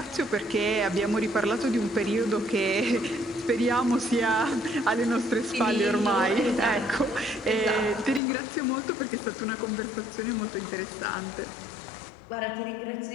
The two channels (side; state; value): right; drops out; at 8.2 s